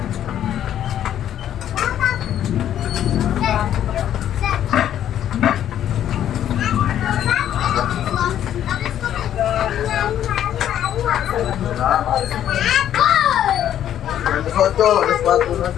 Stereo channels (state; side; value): quieter; right; 10.8 dB